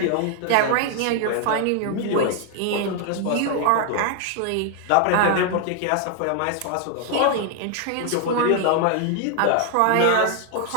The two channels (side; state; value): both; different; correlation 0.00